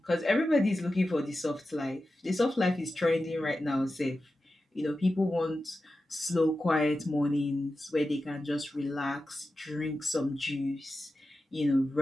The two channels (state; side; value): normal; both; correlation 0.92